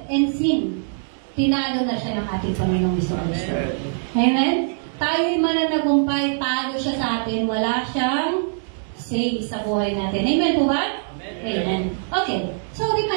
and sin. Tinalo na siya ng ating Panginoong Jesucristo. Amen? Tayo'y mananagumpay, talo siya sa atin. Wala siyang say sa buhay natin. Amen po ba? Amen. Okay. So,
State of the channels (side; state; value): left; silent; digital silence